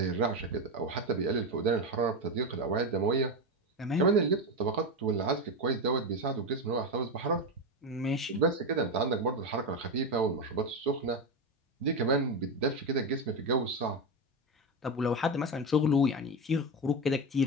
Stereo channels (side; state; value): both; normal; correlation 0.14